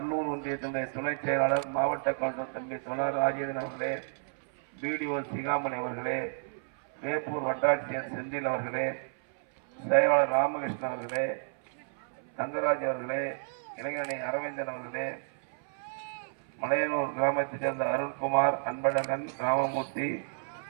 ஒன்றியத்தினுடைய துணை செயலாளர் மாவட்ட கவுன்சிலர் தம்பி தொழர் ராஜேந்திரன் அவர்களே, பிடிஓ சிகாமணி அவர்களே, வேப்பூர் வட்டாட்சியர் செந்தில் அவர்களே, செயலாளர் ராமகிருஷ்ணன் அவர்களே, தங்கராஜ் அவர்களே, இளைஞரணி அரவிந்தன் அவர்களே, மலையனூர் கிராமத்தைச் சேர்ந்த அருண்குமார், அன்பழகன், ராமமூர்த்தி,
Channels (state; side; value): silent; left; 57 dB below the other